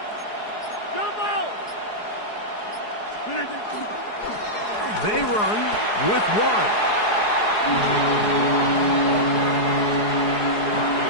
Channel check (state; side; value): late; right; 4.8 ms